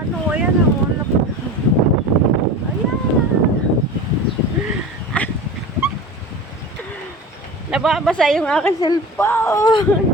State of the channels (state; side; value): normal; both; correlation 0.33